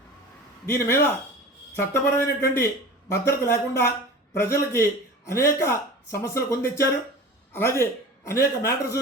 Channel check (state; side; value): normal; both; correlation 0.37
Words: దీని మీద చట్టపరమైనటువంటి భద్రత లేకుండా ప్రజలకి అనేక సమస్యలు కొందెచ్చారు. అలాగే అనేక